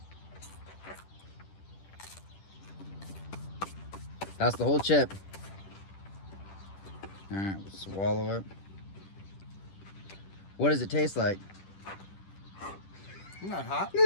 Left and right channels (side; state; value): right; late; 10 ms